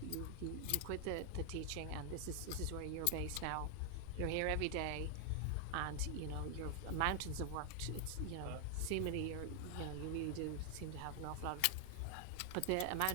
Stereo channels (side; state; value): both; different; correlation 0.00